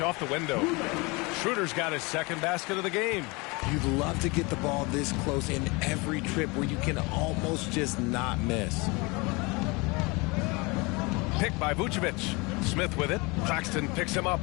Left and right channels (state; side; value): quieter; right; 26.6 dB